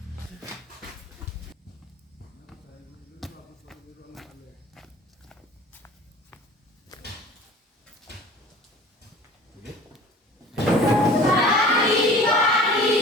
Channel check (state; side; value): normal; both; correlation 0.43